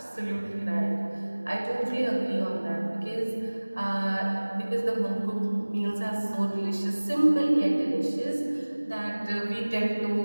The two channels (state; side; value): inverted; both; correlation -1.00